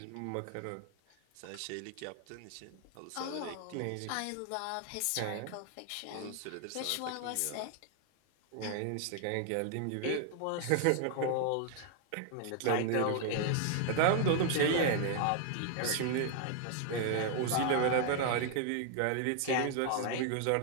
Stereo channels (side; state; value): both; different; correlation 0.00